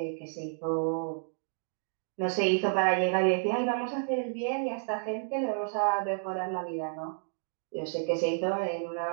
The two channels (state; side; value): silent; left; digital silence